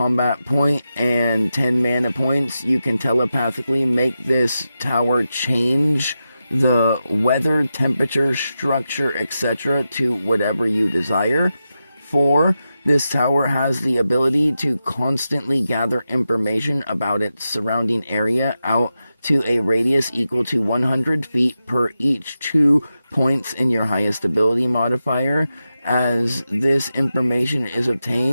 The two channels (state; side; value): inverted; both; correlation -0.90